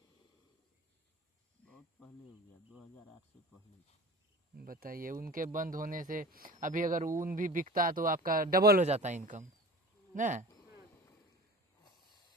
बहुत पहले हो गया, 2008 से पहले। बताइए, उनके बंद होने से अभी अगर ऊन भी बिकता तो आपका डबल हो जाता इनकम ना।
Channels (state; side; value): normal; both; correlation 0.38